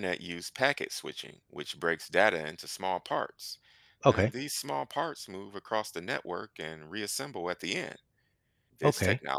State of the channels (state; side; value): identical; both; correlation 1.00